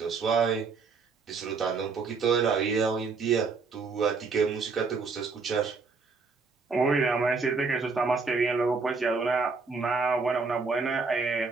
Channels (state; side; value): quieter; left; 4.6 dB